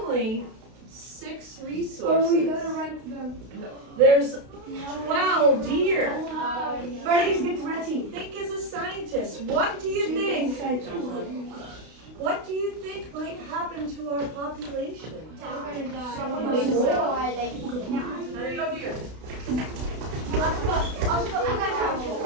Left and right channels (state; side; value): late; left; 32 ms